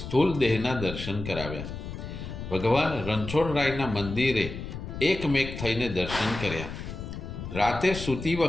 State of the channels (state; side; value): noise; left; rumble, 8 dB below the sound